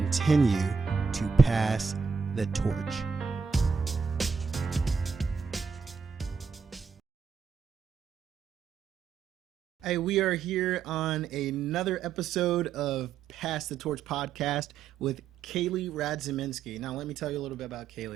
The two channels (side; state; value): left; quieter; 5.8 dB